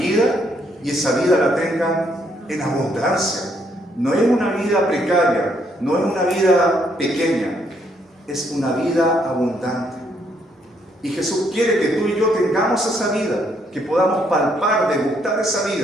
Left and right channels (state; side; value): normal; both; correlation 0.71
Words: y esa vida la tengan en abundancia. No es una vida precaria, no es una vida pequeña, es una vida abundante. Y Jesús quiere que tú y yo tengamos esa vida, que podamos palpar, degustar esa